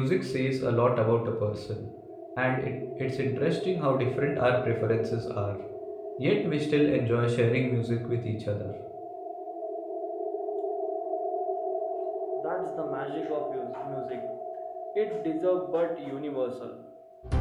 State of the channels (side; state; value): both; identical; correlation 1.00